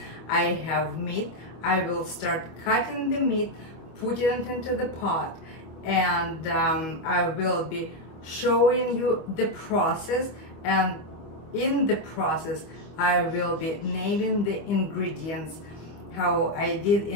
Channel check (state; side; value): late; right; 25 ms